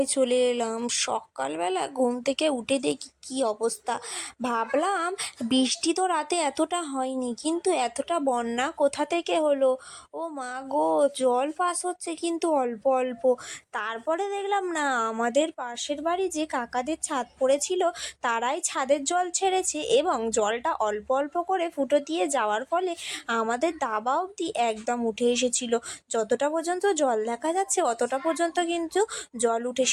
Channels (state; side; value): identical; both; correlation 1.00